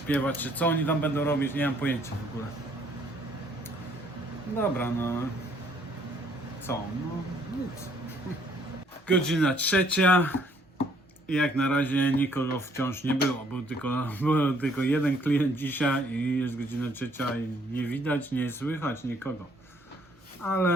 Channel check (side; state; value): both; normal; correlation 0.64